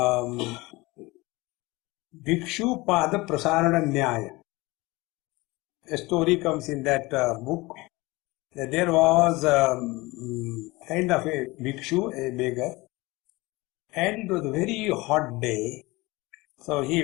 Bhikshu Pada Prasarana Nyaya. A story comes in that book that there was kind of a bhikshu, a beggar, and it was a very hot day. So he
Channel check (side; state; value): right; quieter; 22.2 dB